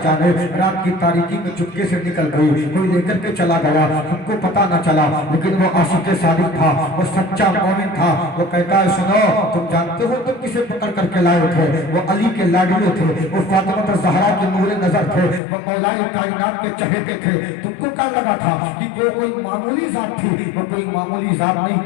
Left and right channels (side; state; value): right; drops out; at 15.4 s